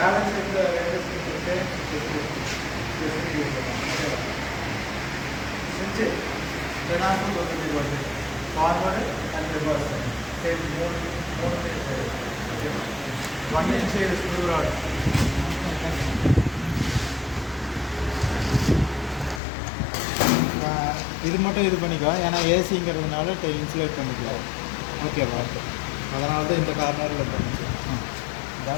இந்த ஸ்விட்ச் ஜெனாக்கும் கொடுத்துட்டு வருது ஃபார்வர்டு அண்ட் ரிவர்ஸ் சரி மூணு சைடு 1 inch ஸ்க்ரூ ராட் இது மட்டும் இது பண்ணிக்கோ ஏன்னா ஏசிங்கிறதுனால இன்சுலேட் பண்ணிக்கலாம் ஓகேவா அதனால தான் இந்த கார்னரில் பண்ணிச்சு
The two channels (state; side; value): drops out; right; at 19.4 s